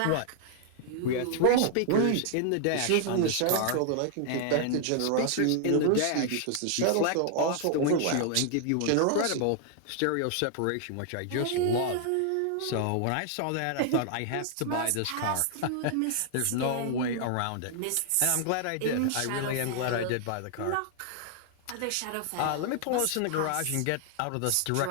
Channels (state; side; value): different; both; correlation 0.00